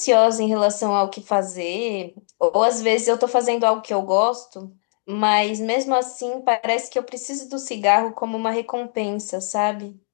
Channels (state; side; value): silent; right; digital silence